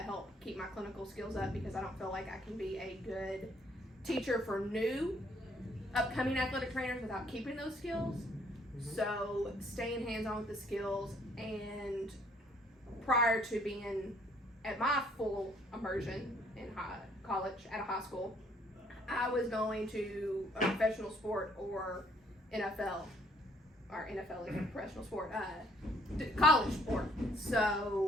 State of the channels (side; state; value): both; normal; correlation 0.64